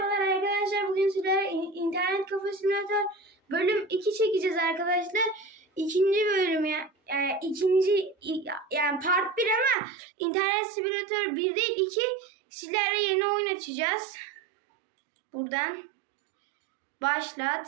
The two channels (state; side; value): drops out; left; at 9.8 s